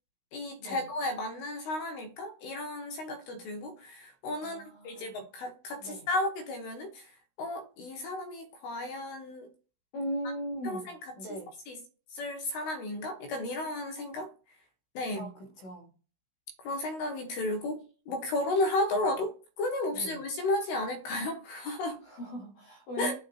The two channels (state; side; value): late; right; 16 ms